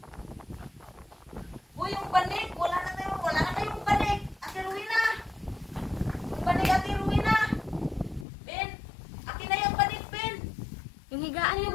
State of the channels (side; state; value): right; drops out; at 8.2 s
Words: Uy, yung banig. Wala na tayong banig. Ate Rowena. Yung banig, Ate Rowena. Ben, akin na yung banig, Ben. Yung higaan niyo,